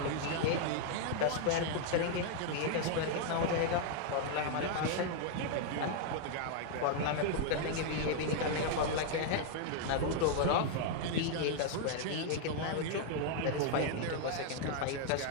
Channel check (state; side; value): different; both; correlation 0.00